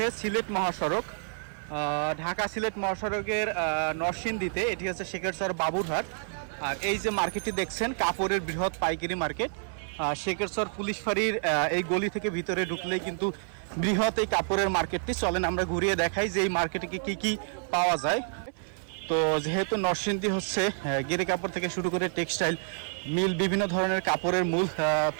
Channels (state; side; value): silent; left; 59 dB below the other